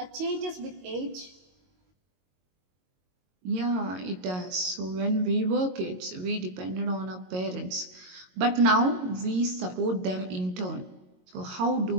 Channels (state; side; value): late; left; 22 ms